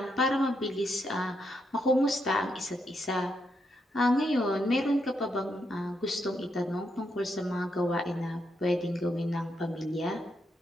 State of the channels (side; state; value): both; normal; correlation 0.80